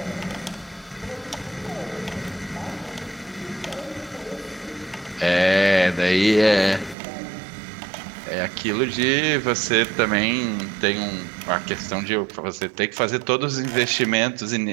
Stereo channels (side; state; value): left; drops out; at 7.0 s